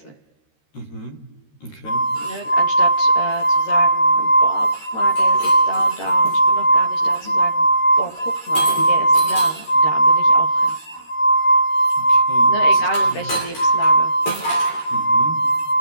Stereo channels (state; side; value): late; right; 13 ms